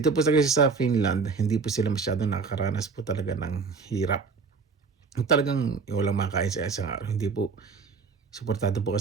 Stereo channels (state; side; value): quieter; left; 4.9 dB